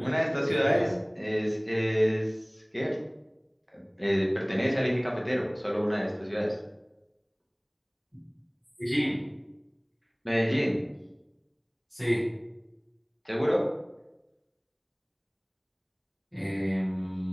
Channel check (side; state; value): both; identical; correlation 1.00